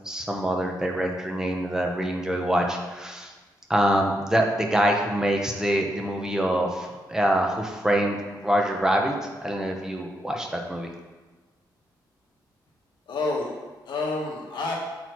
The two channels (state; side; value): normal; both; correlation 0.81